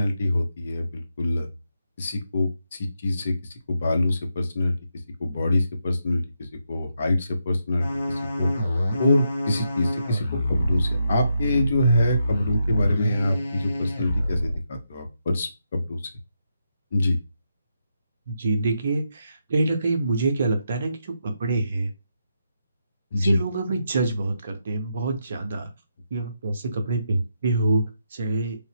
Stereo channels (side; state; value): both; inverted; correlation -0.82